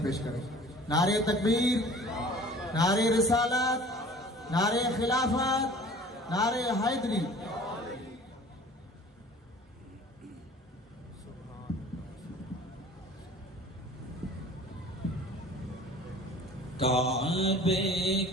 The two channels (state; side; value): normal; both; correlation 0.46